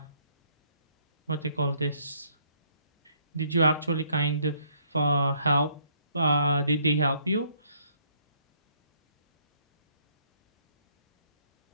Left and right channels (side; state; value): both; inverted; correlation -0.67